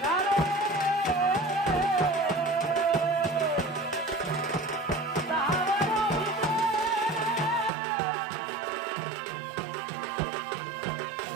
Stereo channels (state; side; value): drops out; left; at 7.7 s